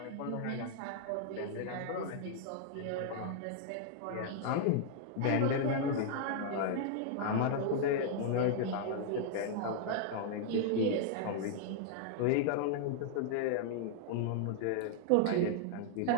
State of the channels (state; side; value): different; both; correlation -0.01